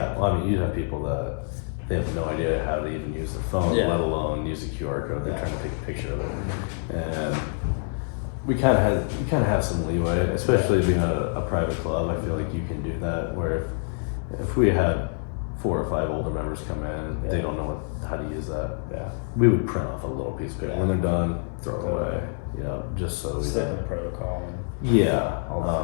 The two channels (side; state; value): right; silent; 61 dB below the other